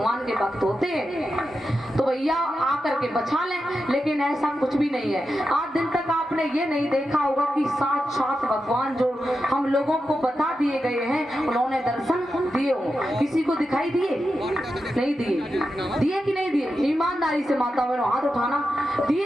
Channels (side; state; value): both; normal; correlation 0.89